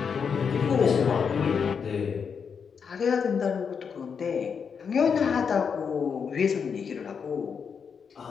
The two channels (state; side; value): quieter; right; 6.4 dB